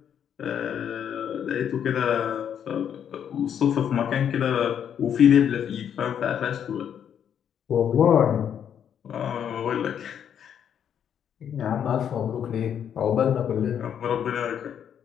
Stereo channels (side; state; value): right; quieter; 8.8 dB